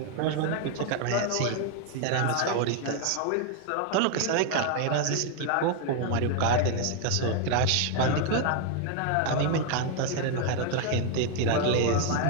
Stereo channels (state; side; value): different; both; correlation 0.00